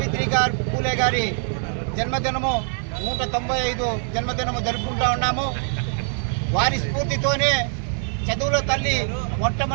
పూలే గారి జన్మదినము 195 జన్మదినము జరుపుకుంటూ ఉన్నాము. వారి స్ఫూర్తితోనే చదువుల తల్లి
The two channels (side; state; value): left; silent; 63 dB below the other